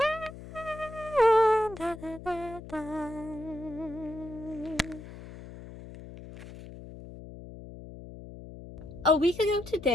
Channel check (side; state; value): left; noise; hum, 14 dB below the sound